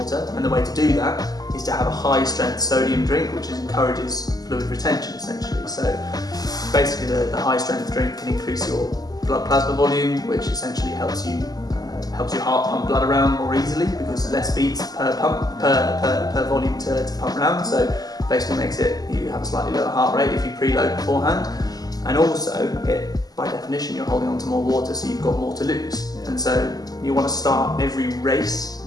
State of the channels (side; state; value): right; late; 0.18 ms